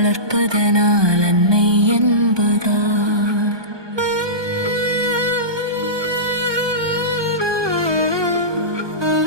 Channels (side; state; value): left; late; 1.2 ms